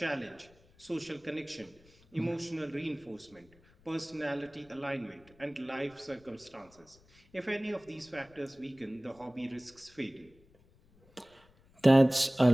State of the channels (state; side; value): noise; left; rumble, 28 dB below the sound